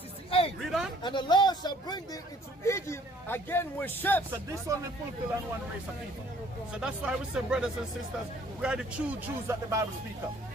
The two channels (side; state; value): both; normal; correlation 0.58